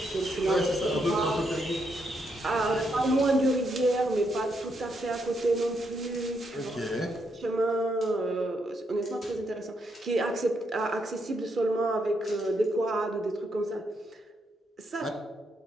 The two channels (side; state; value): both; normal; correlation 0.78